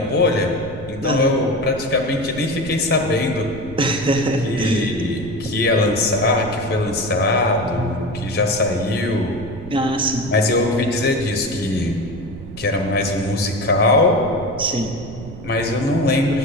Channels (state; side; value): noise; right; rumble, 13 dB below the sound